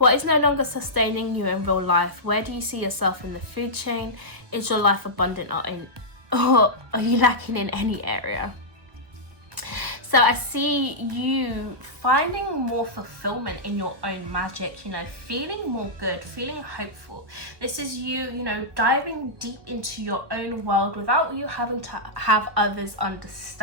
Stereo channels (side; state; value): left; late; 1.4 ms